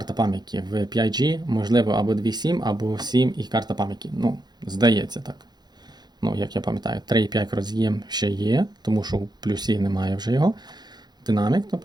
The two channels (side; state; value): left; late; 0.20 ms